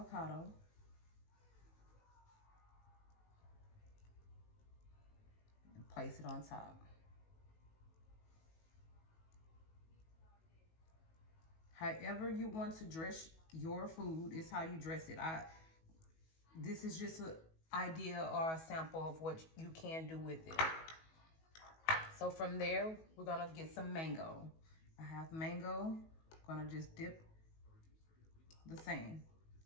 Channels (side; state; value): right; late; 19 ms